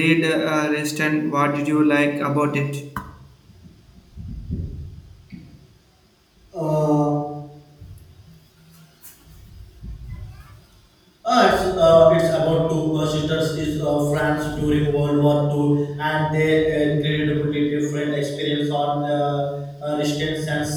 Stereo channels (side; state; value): both; identical; correlation 1.00